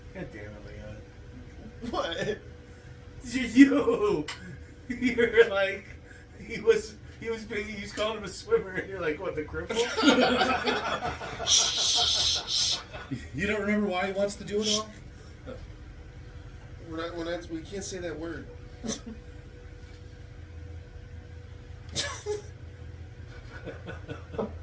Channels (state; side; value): identical; both; correlation 1.00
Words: damn it, Leon. What? You're like, he was calling him a swimmer, and you're like, what, the cripple? You don't remember why he wants to do it all? We can't say that word.